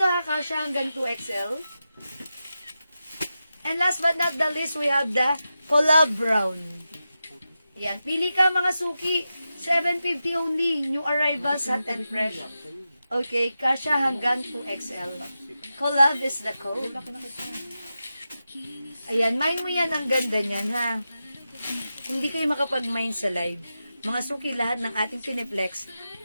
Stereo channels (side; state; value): both; inverted; correlation -0.91